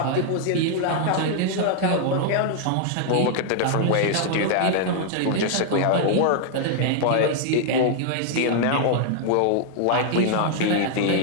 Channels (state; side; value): different; both; correlation 0.00